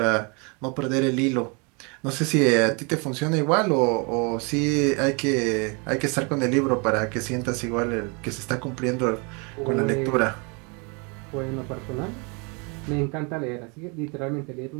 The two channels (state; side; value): quieter; left; 32.2 dB